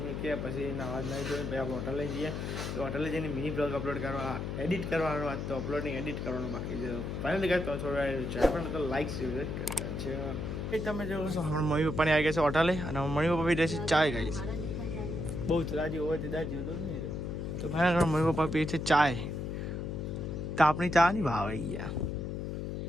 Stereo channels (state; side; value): noise; left; hum, 4 dB below the sound